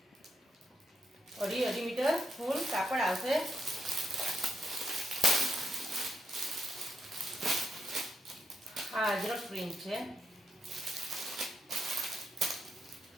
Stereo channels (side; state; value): both; normal; correlation 0.82